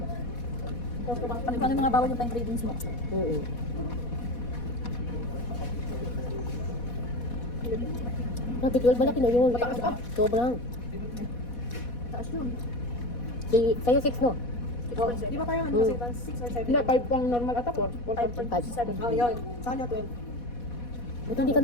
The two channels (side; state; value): right; late; 4.1 ms